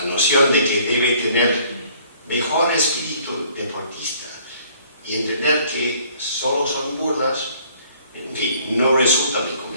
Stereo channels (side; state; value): both; inverted; correlation -0.58